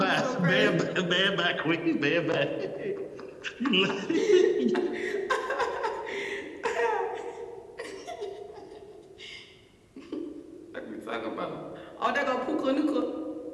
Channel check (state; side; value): identical; both; correlation 1.00